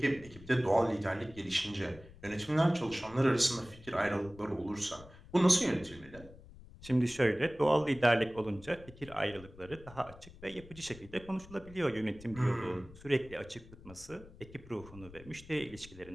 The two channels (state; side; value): noise; left; rumble, 19 dB below the sound